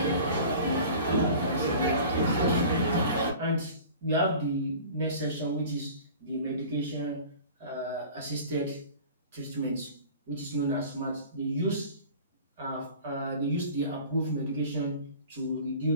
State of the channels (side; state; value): both; inverted; correlation -0.42